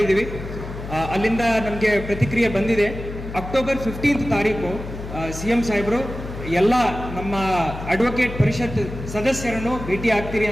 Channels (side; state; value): left; noise; hum, 9 dB below the sound